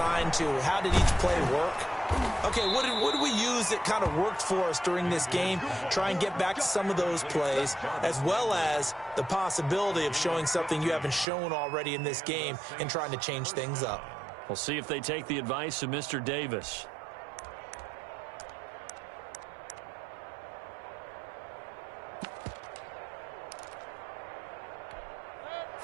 to how did each play work. Okay, what did we use that kind of worked for us during this game? Try and get back to some of those plays, as well as the possibility of showing something you haven't shown already in this game and trying to change things up. We'll see if they take the advice of Mr. Davis.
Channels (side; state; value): left; drops out; at 11.2 s